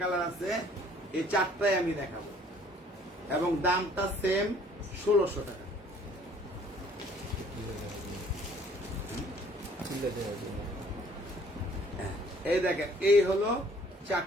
কালার আছে। এই 4টাই আমি দেখাবো, এবং দামটা সেম 1600 টাকা। এই দেখেন, এই হলো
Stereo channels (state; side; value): normal; both; correlation 0.57